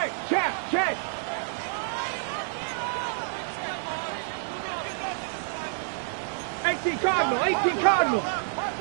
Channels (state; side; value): silent; left; digital silence